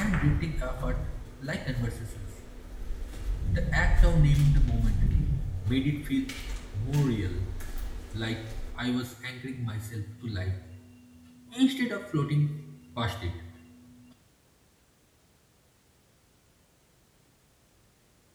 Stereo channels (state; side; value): identical; both; correlation 1.00